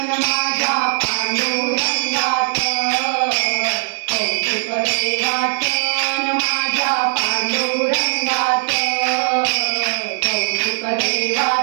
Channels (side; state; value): left; silent; digital silence